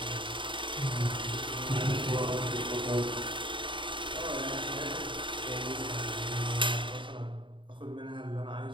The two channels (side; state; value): left; late; 0.24 ms